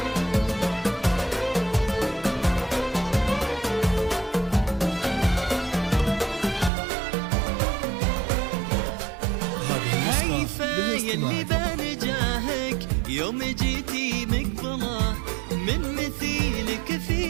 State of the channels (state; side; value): drops out; left; at 6.7 s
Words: يلي بنجاهك يوم جيتي مقبله، من مثيلك